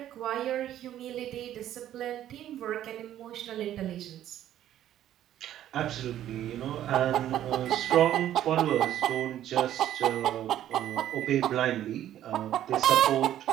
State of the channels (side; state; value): left; quieter; 11.9 dB